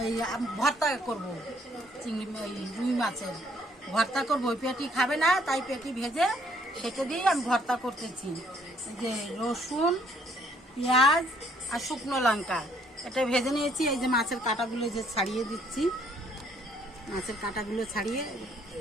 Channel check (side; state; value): both; normal; correlation 0.65